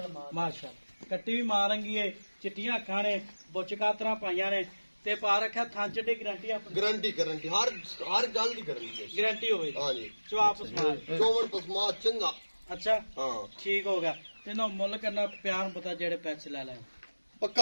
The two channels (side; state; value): both; inverted; correlation -1.00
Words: कट्टी भी मारंगी है। चिट्टियां अखां ने, बुच कातरा पाइयां ने ते पा रखा थान च गारंटी अपनी गारंटी गारंटी हर गल दी गारंटी है। गारंटी होवे हां जी जवाब सुना। चोवन पसमा चंगा। अच्छा हां ठीक हो गया। ते ना मुੱਲ करना प्यार पता जेड़े पैसे ले ले